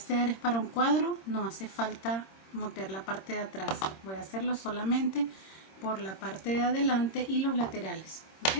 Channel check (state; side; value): late; right; 26 ms